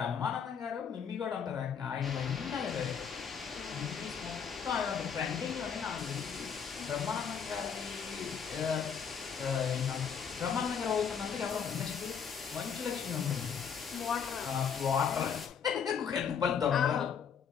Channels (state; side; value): quieter; right; 7.0 dB